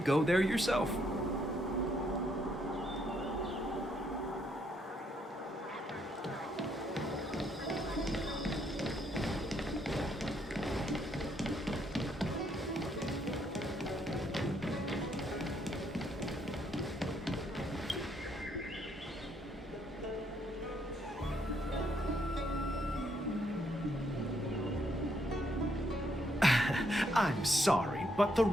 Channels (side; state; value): both; normal; correlation 0.73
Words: there yourself? I'm sorry, but the